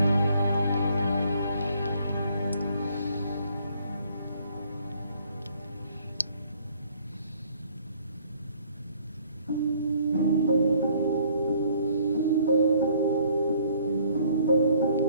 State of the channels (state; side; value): inverted; both; correlation -0.61